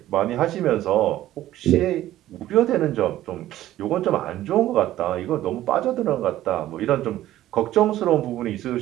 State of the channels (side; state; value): left; quieter; 14.0 dB